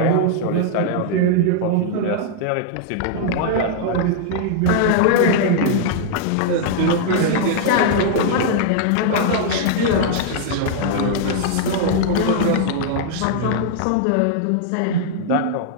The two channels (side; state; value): both; different; correlation -0.01